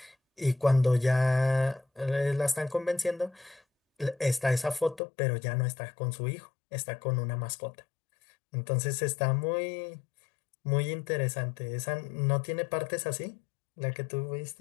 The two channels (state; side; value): drops out; right; at 5.0 s